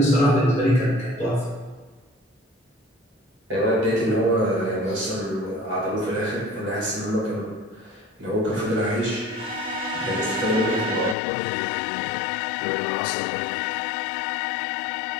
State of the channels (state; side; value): drops out; right; at 11.2 s